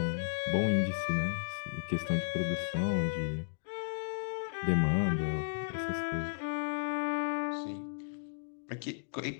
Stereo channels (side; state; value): right; silent; digital silence